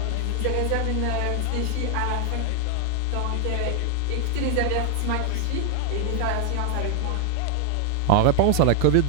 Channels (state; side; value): different; both; correlation 0.00